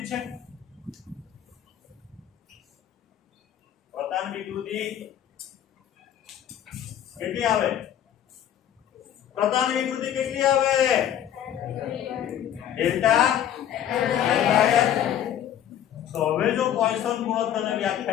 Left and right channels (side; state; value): right; quieter; 10.5 dB